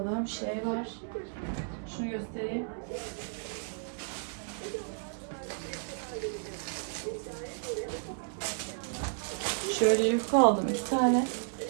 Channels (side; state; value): left; silent; digital silence